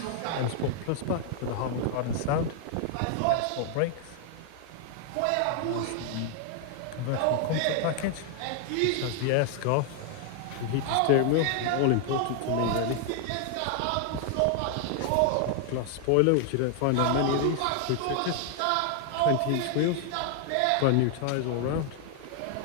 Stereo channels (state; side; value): different; both; correlation 0.00